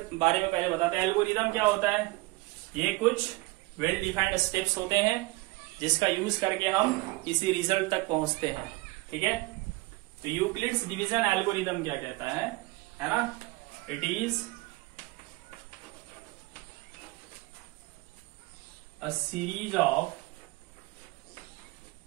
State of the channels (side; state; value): left; quieter; 22.8 dB